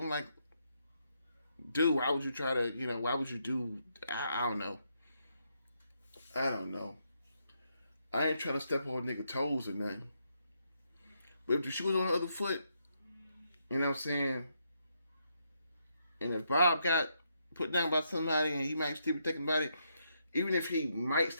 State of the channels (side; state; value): both; inverted; correlation -0.78